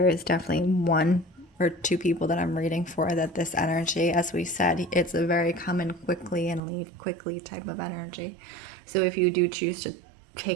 is definitely 1 or 2 people that I'm reading for that this energy, as we said, it's a very come in quickly and leave quickly type of energy. So if you do choose to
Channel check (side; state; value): left; drops out; at 6.6 s